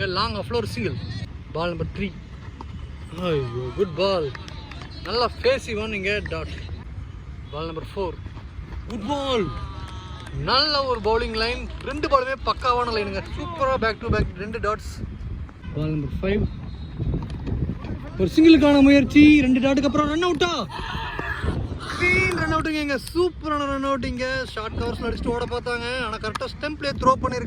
லாங் ஆஃப்ல ஒரு சிங்கிள். பால் நம்பர் 3. ஐயோ, குட் பால். நல்லா ஃபேஸி ஒன். இங்கே dot. Ball number 4. Good ball. நல்ல ஒரு பவுலிங் லைன். 2 பாலுமே பக்காவான லைனுங்க. சூப்பராக back to back 2 dots. Ball number 5 ஒரு சிங்கிளுக்கான முயற்சி. 2 டாட்டுக்கு அப்புறம் ரன் அவுட்டா? ரன் அவுட்டுங்க. இங்கே சூப்பரான ரன் அவுட்டிங்க. ஷார்ட் கவர்ஸில் அடிச்சுட்டு ஓட பார்த்தாங்க, ஆனால் கரெக்டாக ஸ்டெம்ப்லேயே த்ரோ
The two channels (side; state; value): both; identical; correlation 1.00